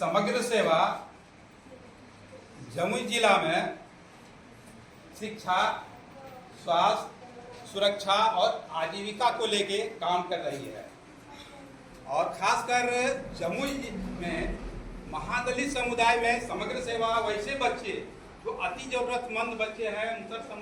सेवा जमुई जिला में शिक्षा, स्वास्थ्य, सुरक्षा और आजीविका को लेके काम कर रही है। और खासकर जमुई में महादलित समुदाय में समग्र सेवा वैसे बच्चे जो अति जरूरतमंद बच्चे हैं, मुसर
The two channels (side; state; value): both; identical; correlation 1.00